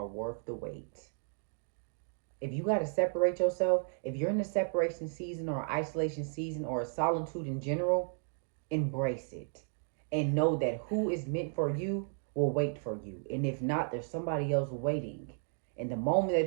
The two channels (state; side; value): silent; left; 55 dB below the other